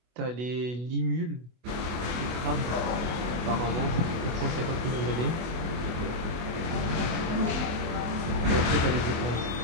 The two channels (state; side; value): late; left; 24 ms